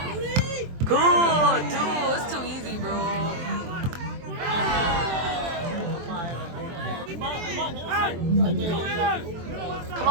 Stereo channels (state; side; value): late; left; 23 ms